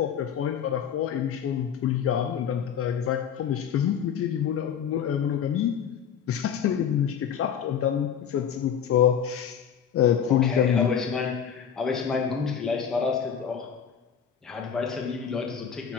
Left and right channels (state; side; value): quieter; right; 8.0 dB